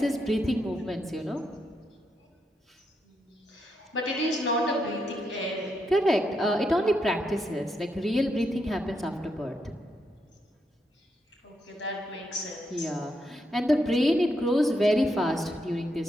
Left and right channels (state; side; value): normal; both; correlation 0.81